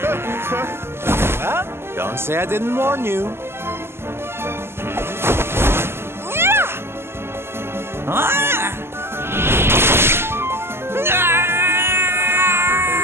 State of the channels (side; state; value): left; late; 0.12 ms